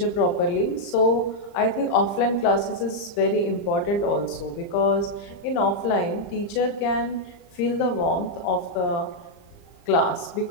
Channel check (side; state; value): right; late; 35 ms